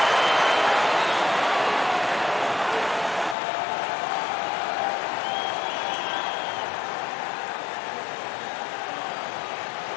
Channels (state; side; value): drops out; right; at 3.4 s